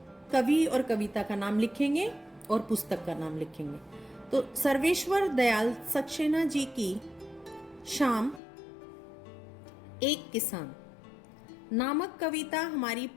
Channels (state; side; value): drops out; right; at 8.4 s